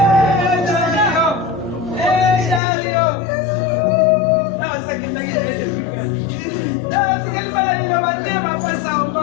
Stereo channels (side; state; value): right; drops out; at 2.6 s